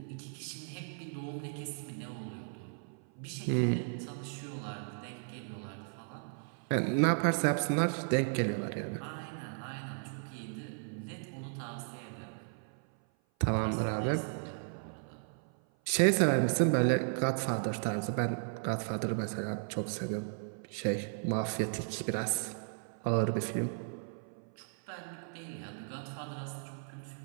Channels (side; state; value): left; silent; 54 dB below the other